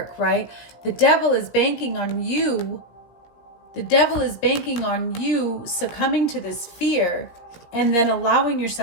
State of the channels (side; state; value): right; late; 17 ms